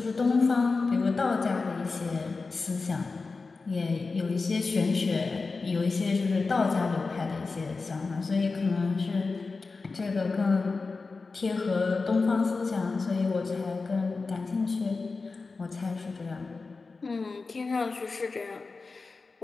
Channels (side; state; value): right; quieter; 4.1 dB